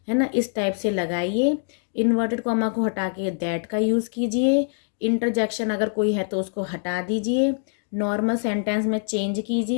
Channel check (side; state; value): right; silent; digital silence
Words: है ना। इस टाइप से लगाइए। इन्वर्टेड कॉमा को हटा के दैट का यूज़ कीजिए। इंटरजेक्शन अगर कोई है तो उसको हटा दीजिए। नॉर्मल सेंटेंस में चेंज